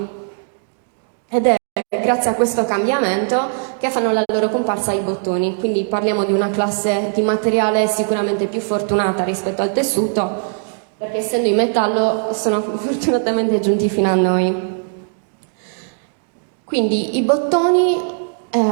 Ed è grazie a questo cambiamento che fanno la loro comparsa i bottoni, quindi parliamo di una classe di materiale sicuramente più fortunata rispetto al tessuto, perché essendo in metallo sono fortunatamente giunti fino a noi. Quindi i bottoni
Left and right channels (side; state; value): left; silent; 67 dB below the other